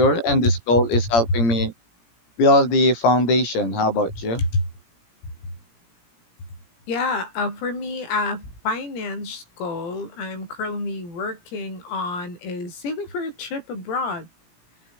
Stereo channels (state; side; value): late; right; 17 ms